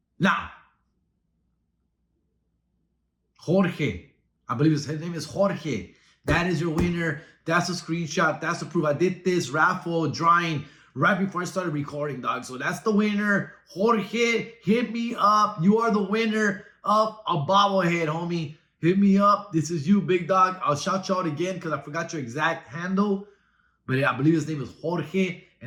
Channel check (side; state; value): both; identical; correlation 1.00